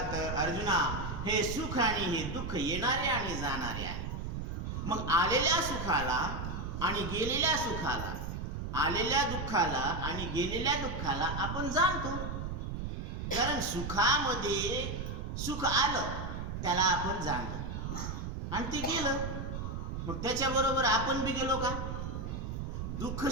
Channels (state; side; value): noise; right; rumble, 4 dB below the sound